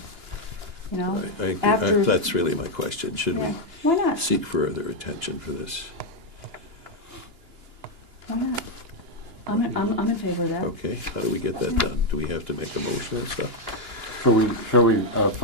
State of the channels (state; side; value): late; left; 2.9 ms